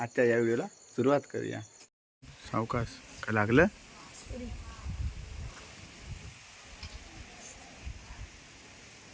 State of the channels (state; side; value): identical; both; correlation 1.00